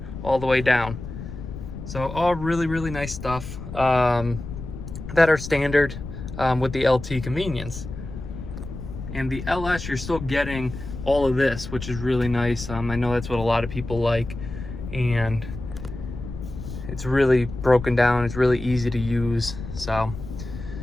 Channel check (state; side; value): noise; left; rumble, 10 dB below the sound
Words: all the way down. So all really, really nice stuff that are standard with the LT convenience. And the LS, you're still getting all of this, which is really nice. I know that's what a lot of people like, and it's really broken down. It's really easy to use. So